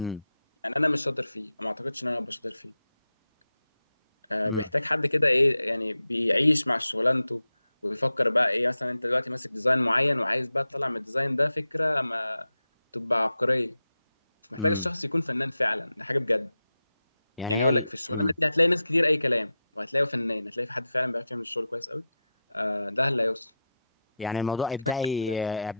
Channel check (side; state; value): both; inverted; correlation -0.88